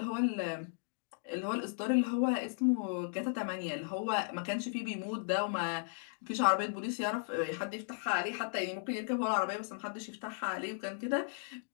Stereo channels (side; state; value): right; silent; digital silence